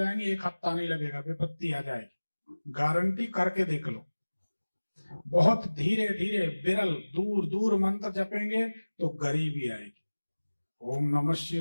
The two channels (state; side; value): inverted; both; correlation -1.00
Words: 1 हफ्ता नहीं लगेगा, विपत्ति आ जाएगी, गारंटी करके देख लो। बहुत धीरे धीरे विरल दूर दूर मंत्र जपेंगे तो गरीबी आएगी। ओम नमः